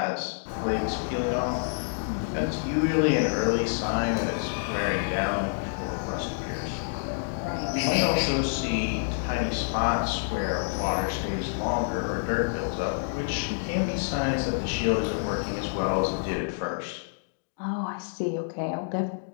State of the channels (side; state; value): right; silent; digital silence